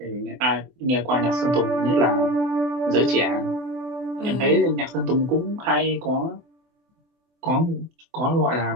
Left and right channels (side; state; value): left; late; 24 ms